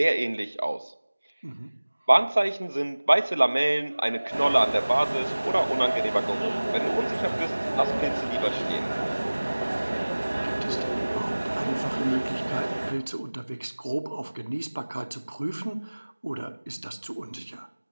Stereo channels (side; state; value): both; inverted; correlation -1.00